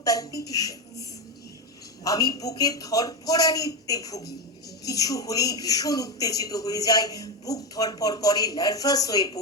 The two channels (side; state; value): both; normal; correlation 0.14